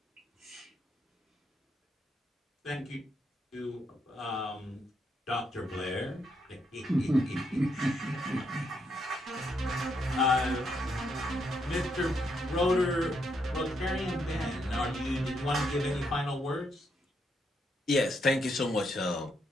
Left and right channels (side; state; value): both; normal; correlation 0.77